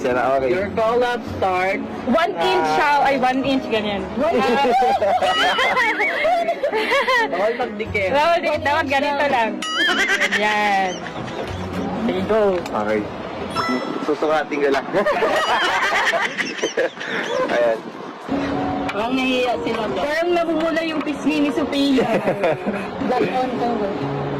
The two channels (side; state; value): both; identical; correlation 1.00